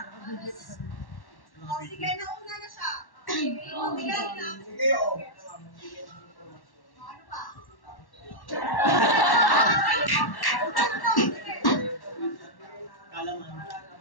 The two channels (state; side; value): late; right; 1.1 ms